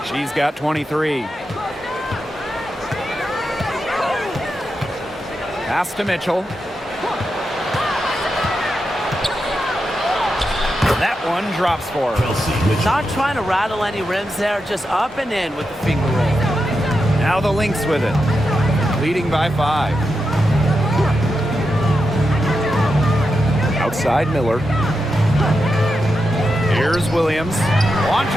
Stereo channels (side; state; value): both; normal; correlation 0.87